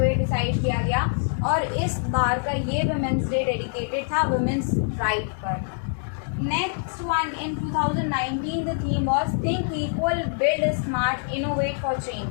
डिसाइड किया गया, और इस बार का ये विमेंस डे डेडिकेटेड था विमेंस राइट पर। Next one, in 2019 the theme was Think Equal, Build Smart, Innovate for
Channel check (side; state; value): right; silent; digital silence